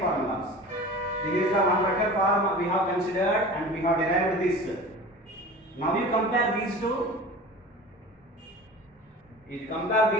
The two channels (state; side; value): normal; both; correlation 0.37